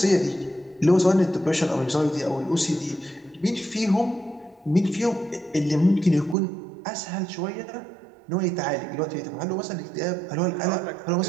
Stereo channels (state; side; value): drops out; left; at 6.4 s